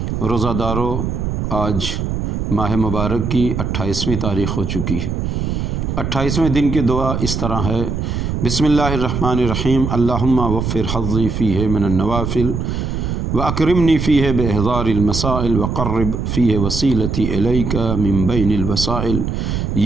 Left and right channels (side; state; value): right; noise; rumble, 2 dB below the sound